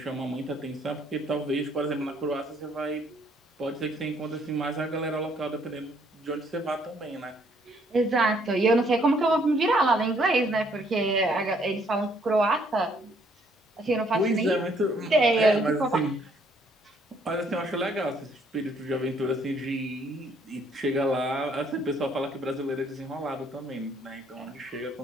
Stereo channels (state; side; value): normal; both; correlation 0.66